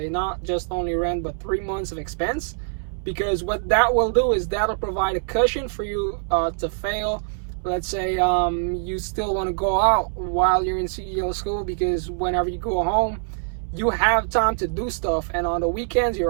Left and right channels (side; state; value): left; silent; 62 dB below the other